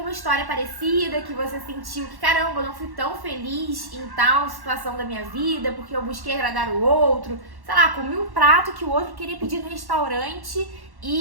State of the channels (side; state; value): left; late; 1.1 ms